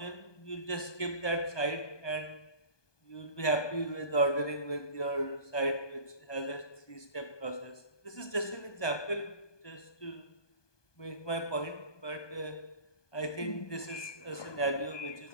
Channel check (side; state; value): right; late; 1.2 ms